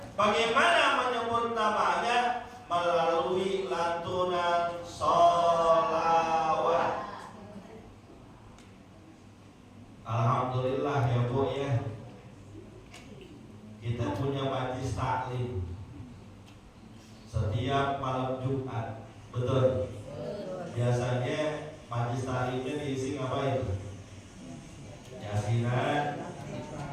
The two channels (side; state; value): both; identical; correlation 1.00